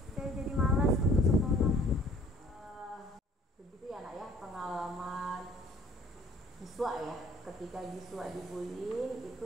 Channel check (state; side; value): normal; both; correlation 0.56